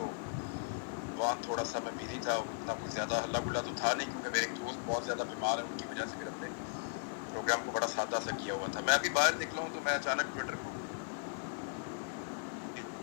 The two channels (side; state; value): right; quieter; 36.0 dB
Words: वहाँ थोड़ा सा मैं बिजी था। उतना कुछ ज़्यादा हल्ला गुल्ला तो था नहीं, क्योंकि मेरे एक दोस्त बहुत ज़्यादा बीमार है, उनकी वजह से फिर हमने प्रोग्राम को बड़ा सादा सा किया हुआ था। मैं अभी बाहर निकला हूँ तो मैं अचानक ट्विटर खोला,